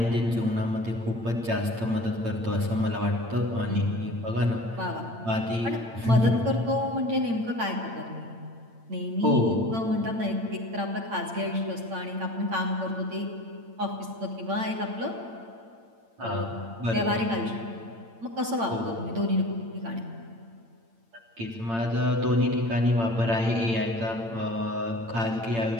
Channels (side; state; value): left; late; 8.8 ms